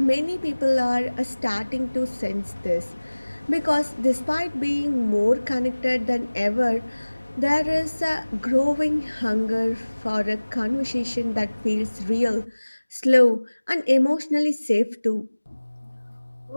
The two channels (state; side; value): inverted; both; correlation -1.00